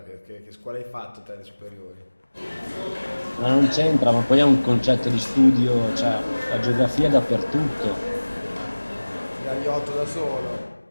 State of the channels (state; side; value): inverted; both; correlation -1.00